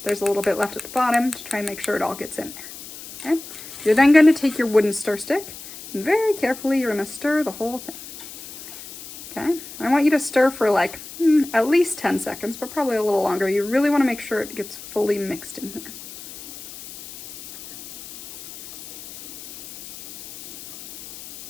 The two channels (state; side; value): noise; left; hiss, 14 dB below the sound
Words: There's a little bit left at the bottom to try and make sure it all gets in there. Okay, you're then gonna take your wooden stir stick and very carefully you're gonna stir the whole thing. Okay, I want you to stir for like at least 10 seconds, but probably a little longer. You really want to make sure it gets fully mixed in here.